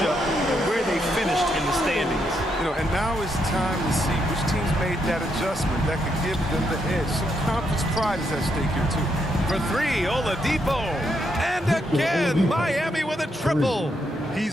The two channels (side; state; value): both; normal; correlation 0.78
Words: and where they finished in the standings. And now it's time to see which teams made that adjustment that could give them the edge. Some conference pride is at stake here, too. For 3, Oladipo. And again, Miami with a triple.